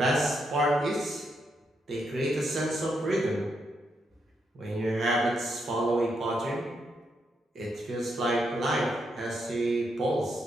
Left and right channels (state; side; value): normal; both; correlation 0.80